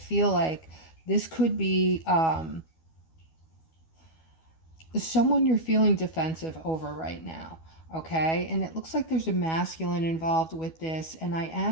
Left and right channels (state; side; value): late; right; 12 ms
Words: like this could be someone you're feeling defensive over right now, okay? And it looks like there's a masculine involved with this, and I